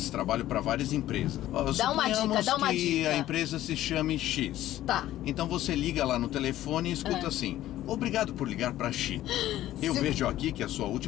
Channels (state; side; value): quieter; right; 13.9 dB